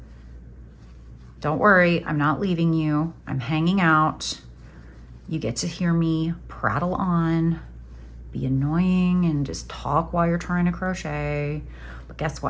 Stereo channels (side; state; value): both; identical; correlation 1.00